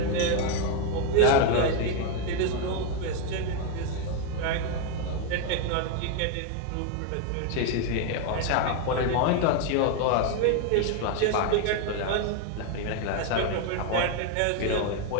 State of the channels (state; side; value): different; both; correlation 0.01